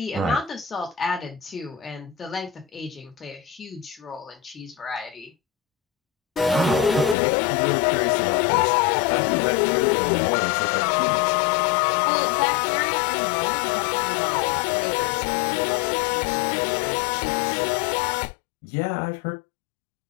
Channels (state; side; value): drops out; right; at 7.2 s